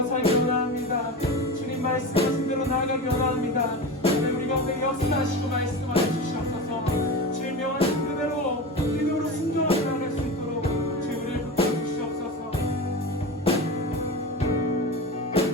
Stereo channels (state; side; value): normal; both; correlation 0.26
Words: 살기 원합니다. 주님 말씀하신 대로 나아가기 원합니다. 우리 가운데 역사하시고 말씀하여 주시옵소서. 주님 명하신 그대로 믿음으로 순종하며 나아갈 수 있도록 주님 우리를 붙여 주시옵소서.